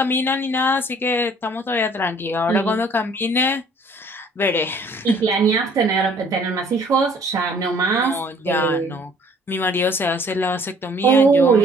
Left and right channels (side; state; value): both; normal; correlation 0.57